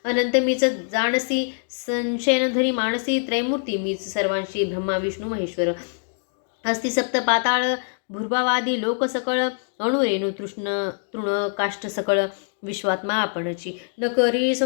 अनंत मीच जाणसी संशयनधरी मानसी त्रैमूर्ती मीच सर्वांशी ब्रह्मा विष्णू महेश्वर. अस्ति सप्त पाताळ भूर्भावादी लोक सकळ अणुरेणू तृण काष्ठ सकळ विश्वात्मा आपणची. न करी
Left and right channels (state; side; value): silent; right; digital silence